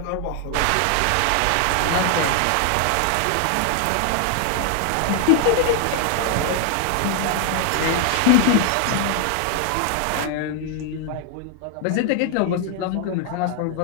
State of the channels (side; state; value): both; different; correlation 0.00